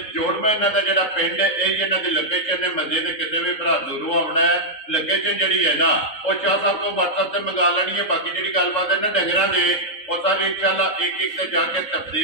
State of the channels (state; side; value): late; right; 3.7 ms